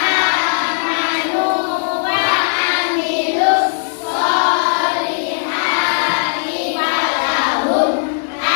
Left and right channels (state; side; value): silent; right; 68 dB below the other